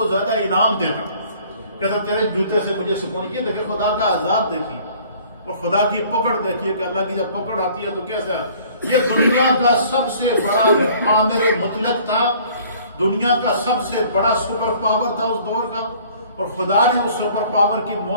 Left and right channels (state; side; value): inverted; both; correlation -0.54